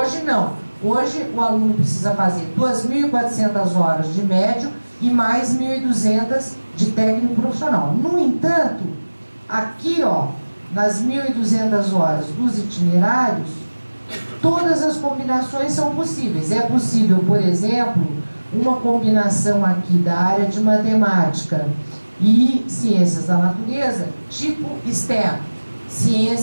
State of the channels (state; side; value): inverted; both; correlation -1.00